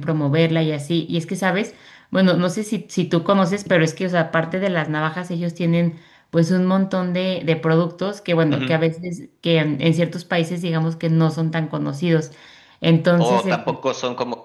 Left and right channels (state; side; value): identical; both; correlation 1.00